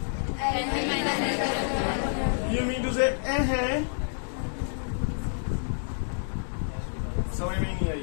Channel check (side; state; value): right; silent; digital silence